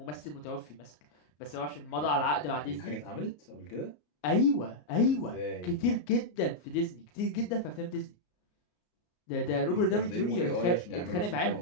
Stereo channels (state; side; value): late; right; 33 ms